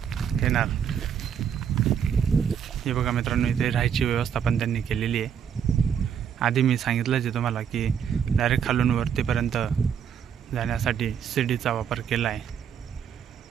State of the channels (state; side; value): quieter; left; 8.0 dB